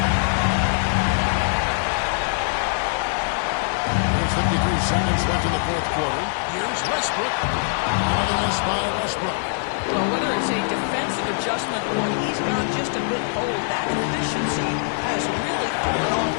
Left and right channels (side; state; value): right; silent; digital silence